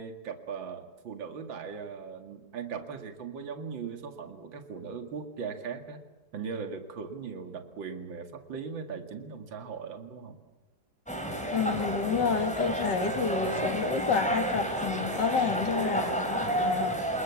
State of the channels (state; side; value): normal; both; correlation 0.04